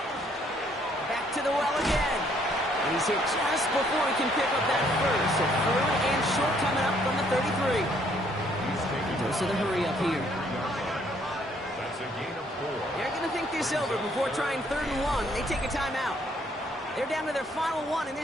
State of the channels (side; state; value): both; normal; correlation 0.66